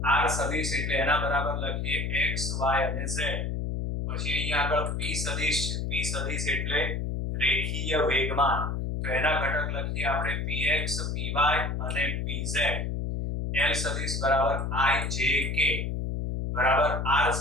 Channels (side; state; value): left; noise; hum, 2 dB below the sound